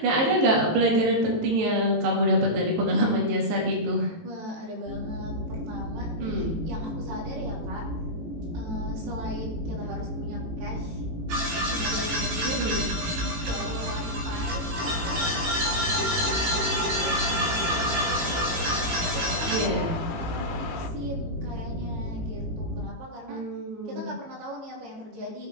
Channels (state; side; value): late; left; 18 ms